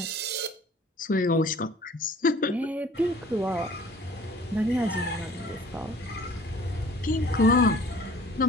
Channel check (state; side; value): normal; both; correlation 0.51